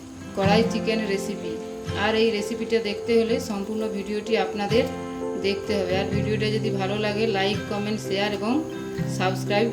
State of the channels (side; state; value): both; identical; correlation 1.00